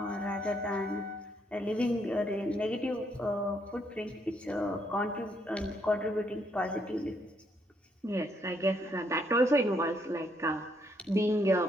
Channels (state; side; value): normal; both; correlation 0.73